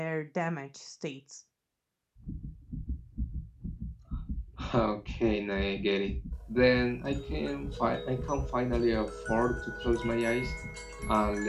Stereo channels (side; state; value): both; identical; correlation 1.00